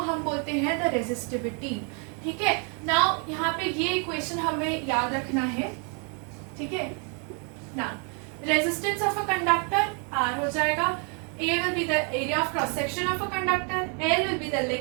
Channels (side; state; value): left; quieter; 38.0 dB